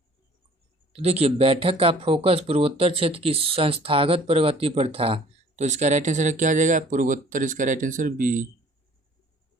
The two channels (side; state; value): both; normal; correlation 0.52